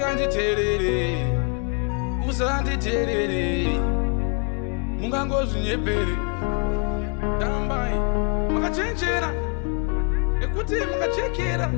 usanditerere mungangozvinyepere tambai makachenjera nekuti makachekera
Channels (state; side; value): quieter; right; 35.2 dB